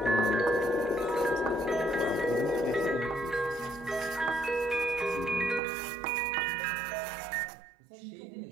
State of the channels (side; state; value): left; drops out; at 5.6 s